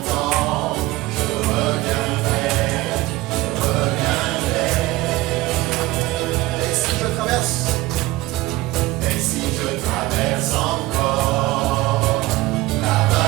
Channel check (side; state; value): left; quieter; 18.9 dB